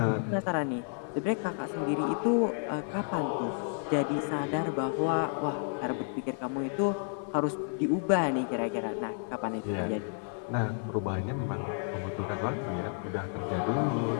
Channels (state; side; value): silent; right; 57 dB below the other